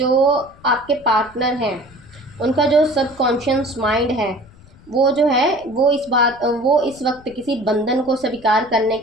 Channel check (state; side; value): noise; left; rumble, 25 dB below the sound